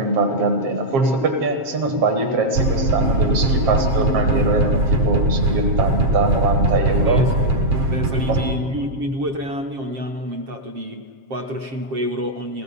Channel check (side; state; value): left; late; 7.5 ms